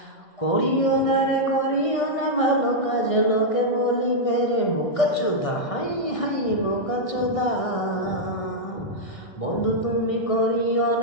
করিও না রে করিও না ভালো কাজ লোকে বলিবে রে বোকা চোদা হাই হাই বোকা চোদা বন্ধু তুমি করিও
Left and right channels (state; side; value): late; right; 1.6 ms